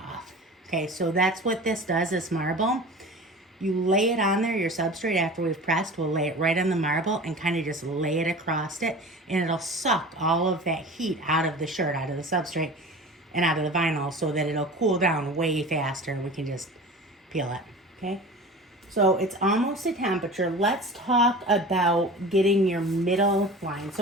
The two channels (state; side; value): normal; both; correlation 0.37